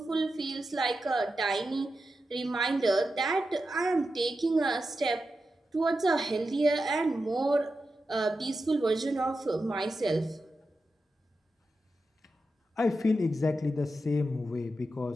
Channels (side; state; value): both; normal; correlation 0.90